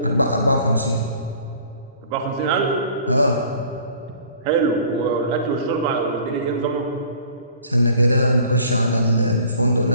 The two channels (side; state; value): both; inverted; correlation -0.50